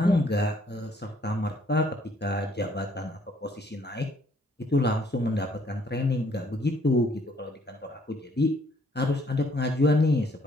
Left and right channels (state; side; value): normal; both; correlation 0.65